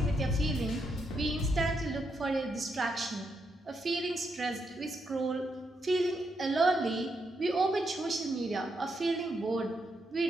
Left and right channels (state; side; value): normal; both; correlation 0.80